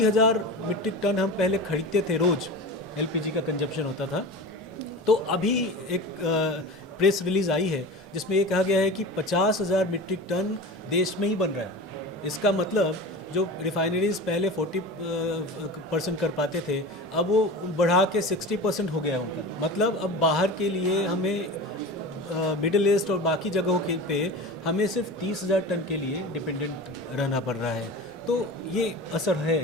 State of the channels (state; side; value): normal; both; correlation 0.32